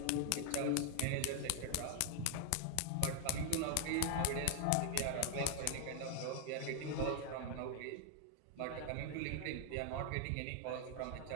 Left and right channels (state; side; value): different; both; correlation 0.00